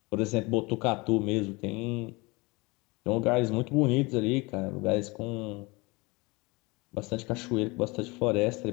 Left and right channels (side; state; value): right; quieter; 25.5 dB